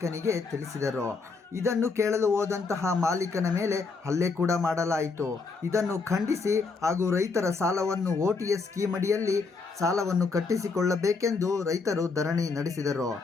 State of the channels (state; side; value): quieter; right; 4.4 dB